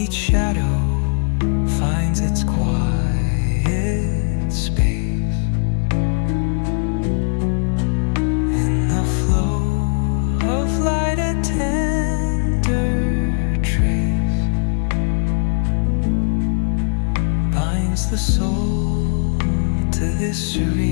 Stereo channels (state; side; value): silent; right; digital silence